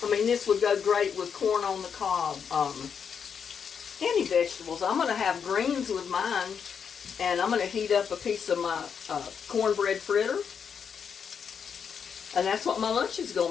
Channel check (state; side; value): quieter; right; 6.9 dB